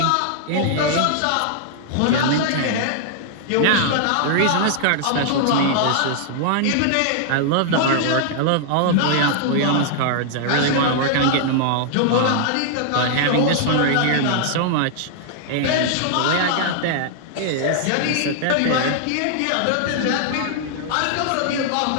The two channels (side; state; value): both; different; correlation -0.01